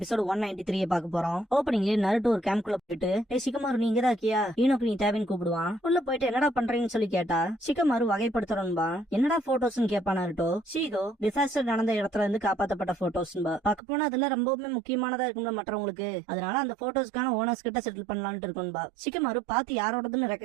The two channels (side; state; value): left; drops out; at 13.8 s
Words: 193 பார்க்க போறோம். ஓப்பனிங்ல நருட்டோ ஒரு கேம்ப்குள்ள போயிட்டு சிகமாரு நீ இங்கதான் இருக்கியா, ஈனோக்கு நீ தேவைன்னு கூப்பிடுவான். உள்ள போயிட்டு என்னடா பண்றீங்கன்னு சொல்லி கேட்டா சிகமாரு வகைப்படுத்துறோன்பா. என்னடா போட்டோஸ்னு கேப்பா நருட்டோ. ஷீகோ டிசாஸ்டர் நடந்த இடத்துல இருந்து காப்பாத்தப்பட்ட போட்டோஸ்பா. பார்க்க போனா அதெல்லாம் ரொம்பவுமே முக்கியமானதா இருக்கும்ல மற்றவங்களுக்கு. அதனால அந்த போட்டோஸ்க்கான ஓனர்ஸ் கிட்ட செட்டில் பண்ணலாம்னு இருக்கும்பா. சிகமாரு பார்த்து யாரோடதுன்னு